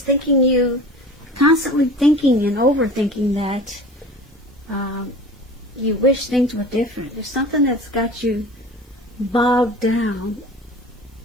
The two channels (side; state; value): both; normal; correlation 0.39